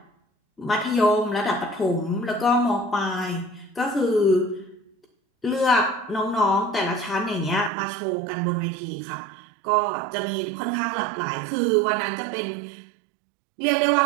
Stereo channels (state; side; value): drops out; left; at 7.7 s